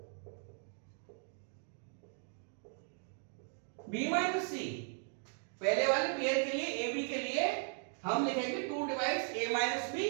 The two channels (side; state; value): left; silent; 53 dB below the other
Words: b माइनस सी। पहले वाले पेयर के लिए, ए बी के लिए हम लिखेंगे 2 डिवाइड्स a माइनस बी,